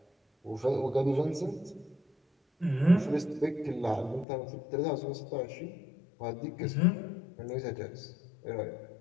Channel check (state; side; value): drops out; right; at 4.2 s